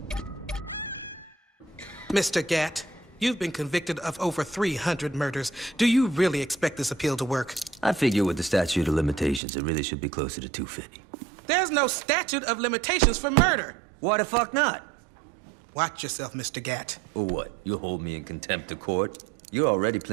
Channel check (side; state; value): left; drops out; at 9.4 s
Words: Mr. Gatt, you've been convicted of over 300 murders. Do you really expect this appeal to work? I figure with the statute of limitations, it really should be closer to 250. There's no statute of limitations for murder. Why the fuck not? Watch yourself, Mr. Gatt. Or what? You'll hold me in contempt of court? You're already